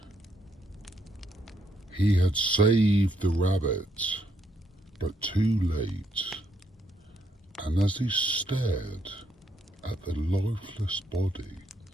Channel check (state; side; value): normal; both; correlation 0.75